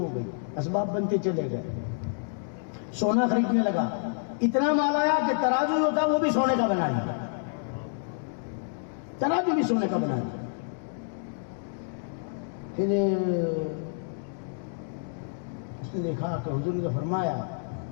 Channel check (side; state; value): right; silent; digital silence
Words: گئی، اسباب بنتے چلے گئے، سونا خریدنے لگا، اتنا مال آیا کہ ترازو ہوتا وہ بھی سونے کا بنا لیا، ترازو بھی سونے کا بنا لیا۔ پھر اس نے دیکھا کہ حضور نے فرمایا